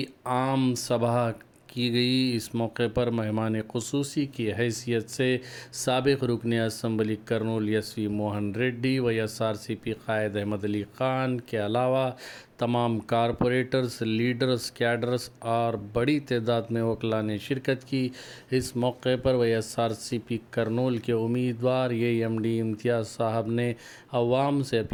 आम सभा की गई। इस मौके पर मेहमान ख़ुसूसी की हैसियत से साबिक़ रुकन assembly Kurnool SV Mohan Reddy, YSRCP कायद अहमद अली ख़ान के अलावा तमाम कारपोरेटर्स, लीडर्स, कैडर्स और बड़ी तादाद में वकला ने शिरकत की। इस मौके पर YSRCP कर्नूल के उम्मीदवार AMD इम्तियाज़ साहब ने अवाम से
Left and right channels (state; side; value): identical; both; correlation 1.00